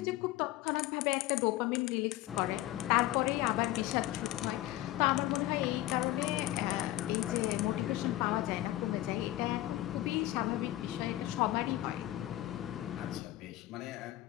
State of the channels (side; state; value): right; quieter; 15.6 dB